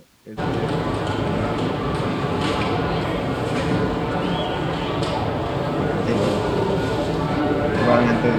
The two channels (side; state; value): both; identical; correlation 1.00